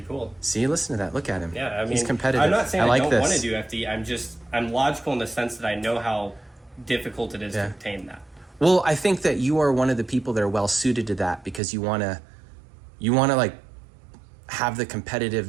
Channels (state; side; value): drops out; left; at 11.6 s